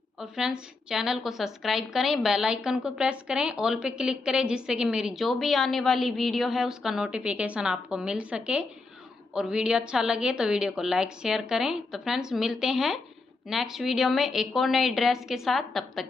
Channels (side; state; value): right; quieter; 3.7 dB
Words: और फ्रेंड्स चैनल को सब्सक्राइब करें, बेल आइकन को प्रेस करें, ऑल पे क्लिक करें, जिससे कि मेरी जो भी आने वाली वीडियो है उसका नोटिफिकेशन आपको मिल सके। और वीडियो अच्छा लगे तो वीडियो को लाइक शेयर करें। तो फ्रेंड्स मिलते हैं नेक्स्ट वीडियो में एक और नई ड्रेस के साथ, तब